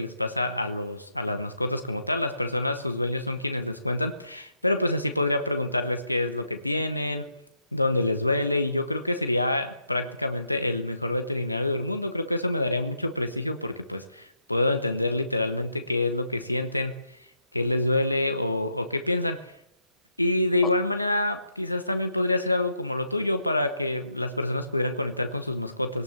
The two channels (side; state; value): both; inverted; correlation -0.80